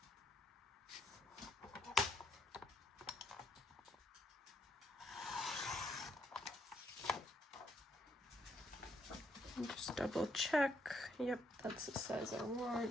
Just double check. Yep, that's the size I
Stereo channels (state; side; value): normal; both; correlation 0.73